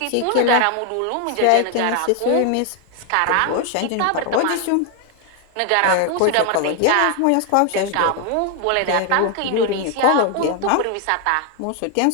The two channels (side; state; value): both; different; correlation 0.00